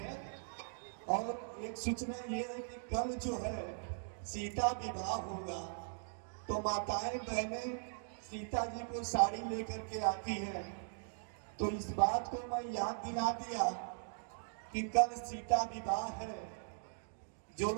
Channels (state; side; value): silent; left; digital silence